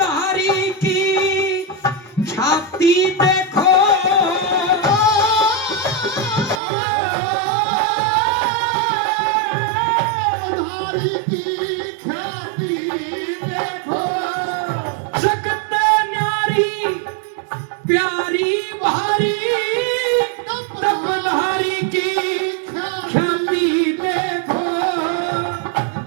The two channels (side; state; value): left; drops out; at 6.6 s